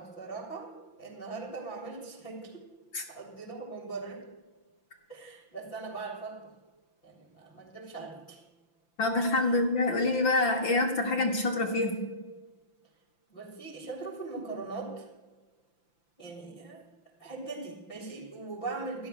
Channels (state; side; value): late; right; 5.9 ms